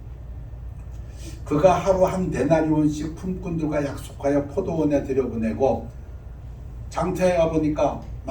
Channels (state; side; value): identical; both; correlation 1.00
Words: 그가 하루 한 데나리온씩 품꾼들과 약속하여 포도원에 들여보내고 장터에 가보니까